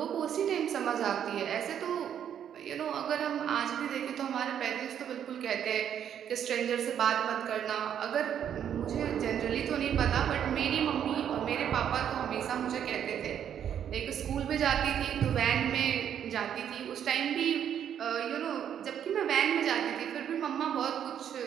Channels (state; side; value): quieter; left; 9.2 dB